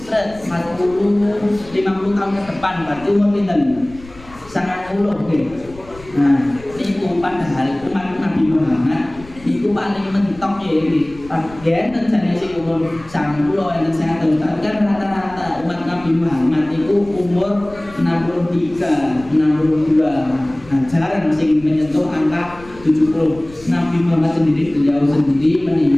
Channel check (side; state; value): left; noise; rumble, 20 dB below the sound